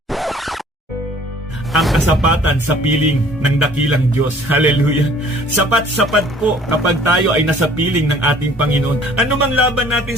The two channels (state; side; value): normal; both; correlation 0.54